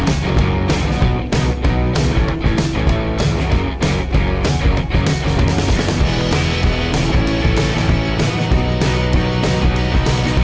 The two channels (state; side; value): identical; both; correlation 1.00